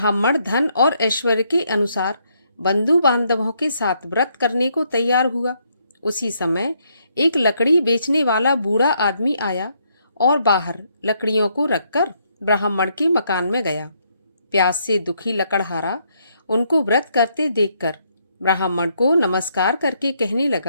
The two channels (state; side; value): inverted; both; correlation -0.73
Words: धन और ऐश्वर्य के अनुसार बंधु बांधवों के साथ व्रत करने को तैयार हुआ। उसी समय एक लकड़ी बेचने वाला बूढ़ा आदमी आया और बाहर लकड़ियों को रखकर ब्राह्मण के मकान में गया। प्यास से दुखी लकड़हारा उनको व्रत करते देखकर ब्राह्मण को नमस्कार करके कहने